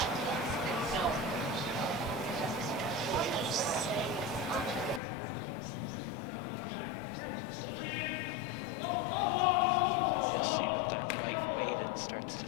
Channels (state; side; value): drops out; right; at 5.0 s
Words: You'll see with that light weight, it starts